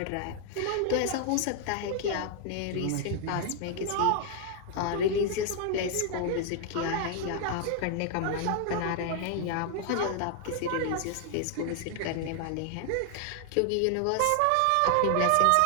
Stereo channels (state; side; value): different; both; correlation 0.00